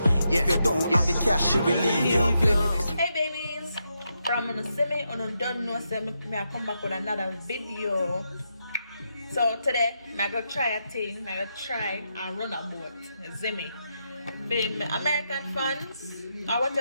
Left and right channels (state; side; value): inverted; both; correlation -0.83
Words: If you don't have the cash, she will leave you. Hey babies, from on the semi on don't know say me I come back with another video. So today I go try a thing. I go try and run a boat. Zimmy, being American fans or